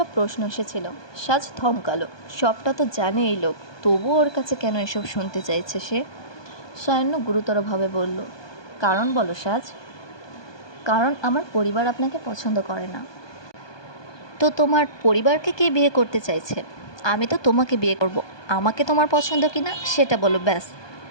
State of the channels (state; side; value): late; right; 1.2 ms